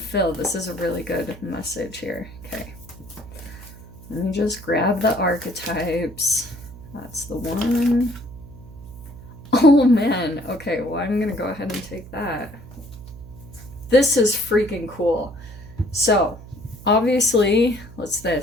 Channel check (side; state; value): right; noise; hum, 17 dB below the sound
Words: this is a really good message here. Okay. Let me just grab the archetypes. That's the one. Oh man. Okay, well, I'm gonna go ahead and take that. This is freaking cool. So, obviously, what's